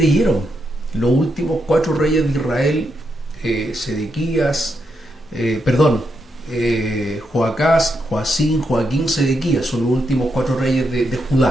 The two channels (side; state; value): both; normal; correlation 0.81